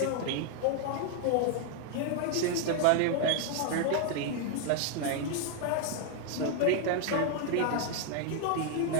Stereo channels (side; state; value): both; different; correlation 0.00